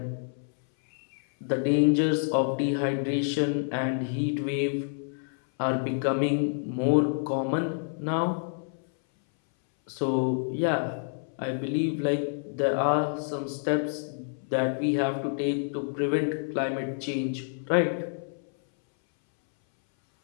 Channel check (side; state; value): right; silent; 59 dB below the other